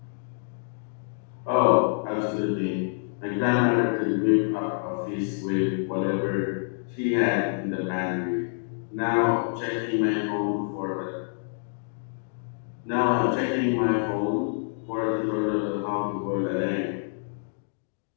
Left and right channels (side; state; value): right; silent; digital silence